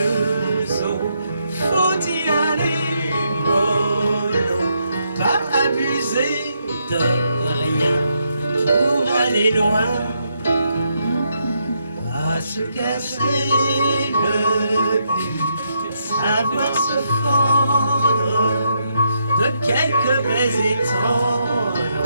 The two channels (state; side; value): inverted; both; correlation -0.79